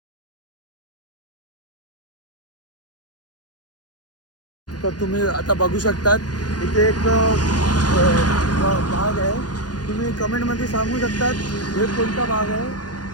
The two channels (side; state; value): right; late; 0.69 ms